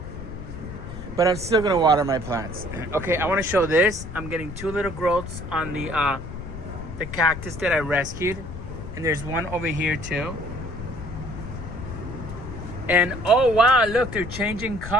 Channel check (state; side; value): noise; left; rumble, 10 dB below the sound